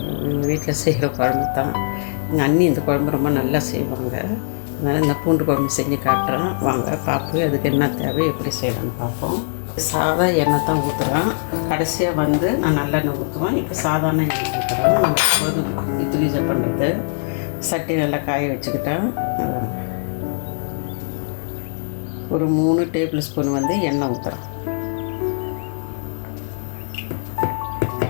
வீட்டில் செய்கிற குழம்பு தான். எங்கள் அண்ணி இந்த குழம்பு ரொம்ப நல்லா செய்வாங்க. அதனால் இந்த பூண்டு குழம்பு செஞ்சு காட்டுறேன். வாங்க பார்ப்போம் அதுக்கு என்ன தேவை, எப்படி செய்யலான்னு பார்ப்போம். சாதா எண்ணெய் தான் ஊற்றுறேன். கடைசியாக நான் நல்லெண்ணெய் ஊற்றுவேன். இப்போ சாதாரண எண்ணெய் ஊற்றுறேன். நம்ம இட்லி பண்ணுறது சட்டி நல்லா காய வச்சுக்கிட்டேன். ஒரு 3 டேபிள் ஸ்பூன் எண்ணெய் ஊற்றுறேன்.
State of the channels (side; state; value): right; silent; 65 dB below the other